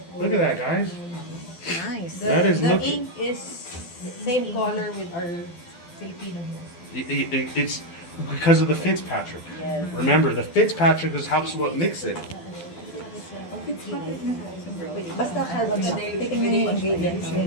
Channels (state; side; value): late; right; 12 ms